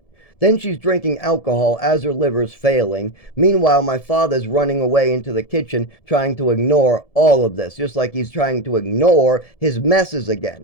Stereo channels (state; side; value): late; right; 1.7 ms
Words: Then she's drinking alcohol as her liver's failing. Meanwhile, my father's running away into the kitchen trying to ignore all of this, just like he's trying to ignore his messes